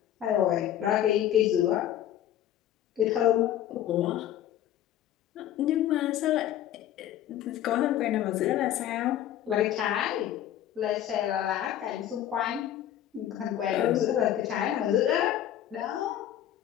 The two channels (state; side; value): quieter; right; 11.6 dB